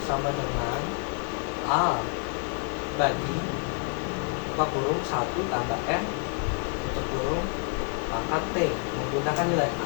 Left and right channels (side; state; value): right; quieter; 38.9 dB